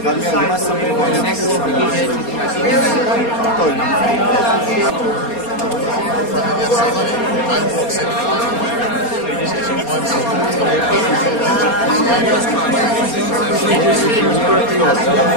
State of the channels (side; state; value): right; late; 4.3 ms